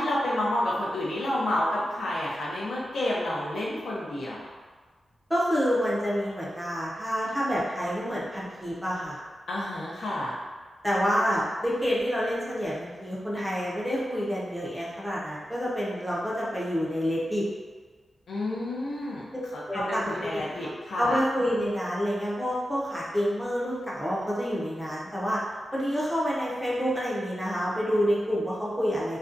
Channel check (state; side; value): normal; both; correlation 0.91